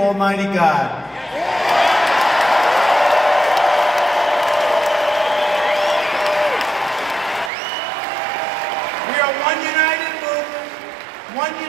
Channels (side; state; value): left; drops out; at 7.5 s